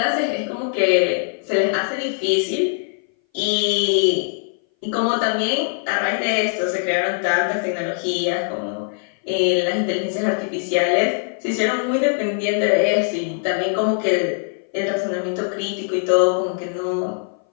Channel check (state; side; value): silent; right; 59 dB below the other